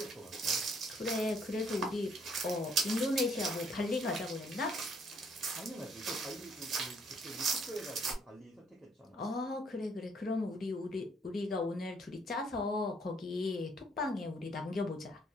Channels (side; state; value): both; normal; correlation 0.66